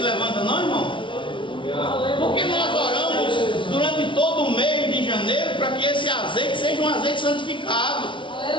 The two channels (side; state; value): right; late; 0.24 ms